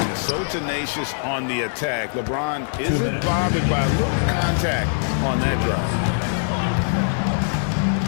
So tenacious on the attack. LeBron isn't bothered by a little contact on that drive.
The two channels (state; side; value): silent; right; digital silence